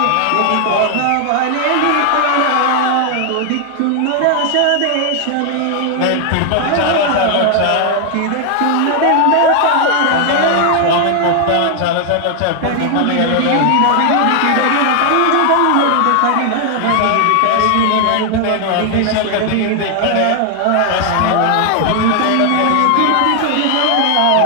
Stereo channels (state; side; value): different; both; correlation 0.00